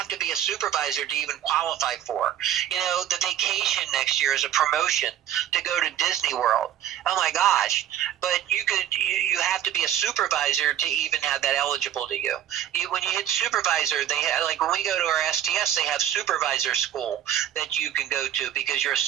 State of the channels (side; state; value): left; quieter; 11.0 dB